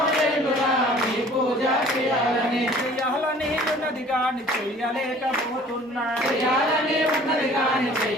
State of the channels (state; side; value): normal; both; correlation 0.51